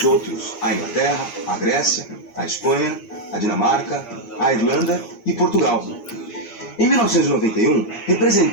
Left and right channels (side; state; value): right; late; 8.6 ms